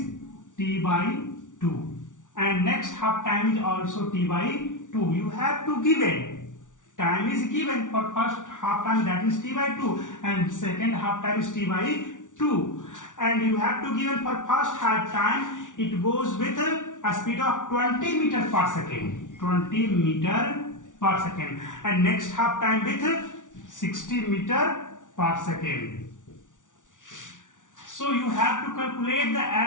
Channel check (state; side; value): late; right; 0.87 ms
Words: t by 2, and next half time is also t by 2. You have to give it. Time is given for first half time, that is t by 2, and second half time is t by 2. And you have to give it for first half time. It goes with a speed of 20 meter per second. 20 meter per second. And next half time with 60 meter per second. So you have to calculate the